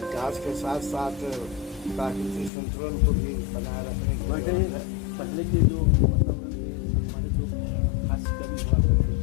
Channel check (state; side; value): drops out; right; at 2.5 s